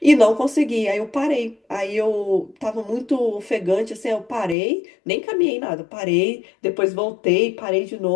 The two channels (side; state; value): right; drops out; at 4.5 s